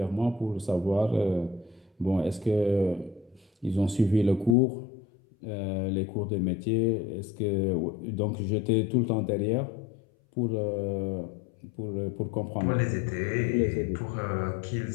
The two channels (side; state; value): right; drops out; at 4.5 s